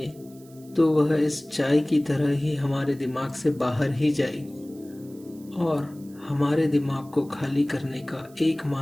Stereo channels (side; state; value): right; noise; hiss, 26 dB below the sound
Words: तो वह इस चाय की तरह ही हमारे दिमाग से बाहर ही जाएगी। और हमारे दिमाग को खाली करने का